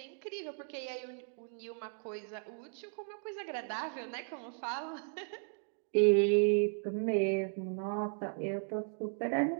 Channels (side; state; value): left; silent; 54 dB below the other